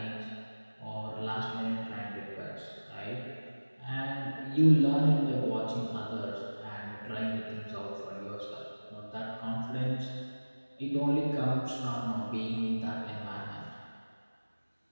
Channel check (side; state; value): both; inverted; correlation -1.00